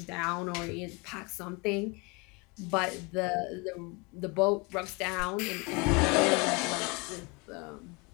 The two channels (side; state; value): right; quieter; 28.7 dB